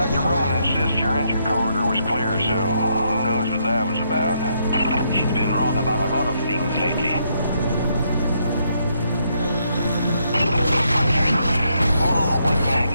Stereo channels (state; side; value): inverted; both; correlation -0.75